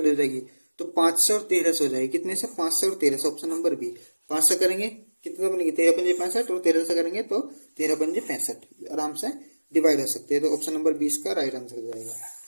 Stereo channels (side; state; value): both; inverted; correlation -1.00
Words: हो जाएगी, तो 5 से और 13 से हो जाएगी। कितने से 5 से और 13 से, ऑप्शन नंबर बी। 5 से करेंगे कितना बनेगी 13×5 = 65 और 13 से करेंगे तो 13×65 आराम से डिवाइड हो सकते हैं। तो ऑप्शन नंबर 20 का राइट आंसर हो जाएगा।